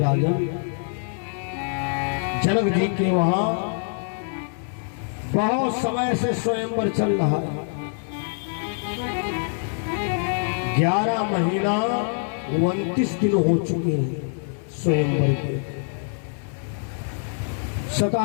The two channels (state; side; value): silent; right; 62 dB below the other